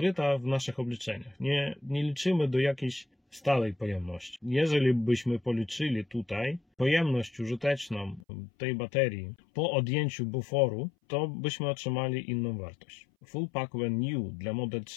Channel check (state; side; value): drops out; right; at 8.2 s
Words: w naszych obliczeniach. Nie liczymy do jakiejś stałej pojemności. Jeżeli byśmy policzyli tutaj pojemność użyteczną tej baterii po odjęciu buforu, to byśmy otrzymali inną wartość. Full pack when new dla Model